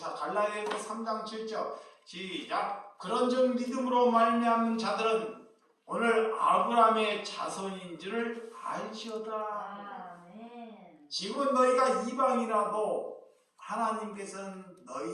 갈라디아서 3장 7절 시작. 그런즉 믿음으로 말미암는 자들은 오늘 아브라함의 자손인 줄을 알지어다. 아멘. 지금 너희가 이방이라도 하나님께서는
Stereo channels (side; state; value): both; identical; correlation 1.00